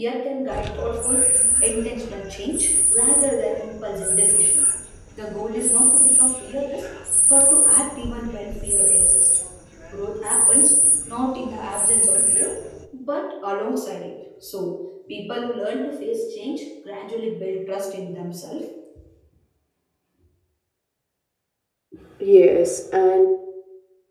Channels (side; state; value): both; identical; correlation 1.00